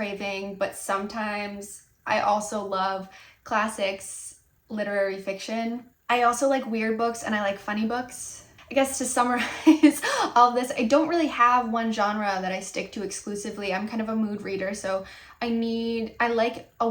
but sometimes I also love classics, literary fiction. I also like weird books and I like funny books. I guess to summarize all of this, I don't really have one genre that I stick to exclusively. I'm kind of a mood reader, so I like a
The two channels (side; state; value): both; identical; correlation 1.00